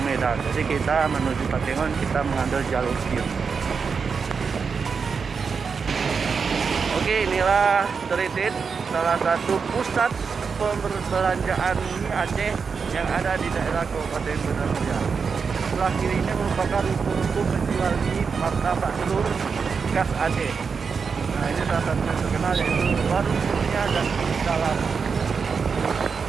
Medan. Jadi kita menuju Takengon, kita mengambil jalur kiri. Oke, inilah Telitin, salah satu pusat perbelanjaan mie Aceh yang ada di daerah Kabupaten Banda Meriah. Sebelah kiri ini merupakan ruko-ruko penjual mie, martabak telur khas Aceh. Nah, ini salah satu yang terkenal yaitu Warung Kurnia dan Dalam.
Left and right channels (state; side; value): quieter; left; 5.6 dB